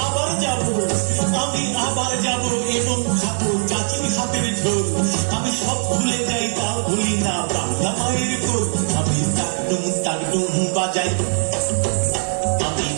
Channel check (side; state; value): left; silent; digital silence